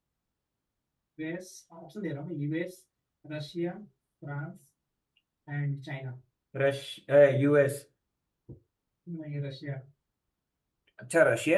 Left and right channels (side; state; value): both; identical; correlation 1.00